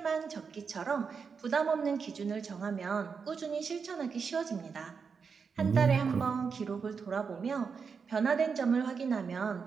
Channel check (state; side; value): quieter; left; 5.7 dB